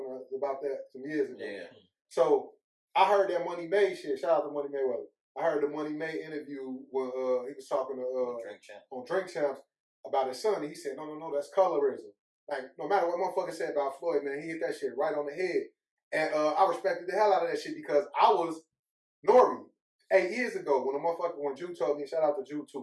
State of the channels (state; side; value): identical; both; correlation 1.00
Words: about that some years ago? Yeah. So I heard that Money May shit. Shout out to Money Mayweather. I heard the Money May interview when he was talking to Drink champ. on Drink Champs about his son. And he said, no, that's colorism. Like, no matter what motherfucker said about Floyd, man, he hit that shit right on the head. And I respected the hell out of that shit because I was Nori 8 years ago when Jew told me, shout out to Jew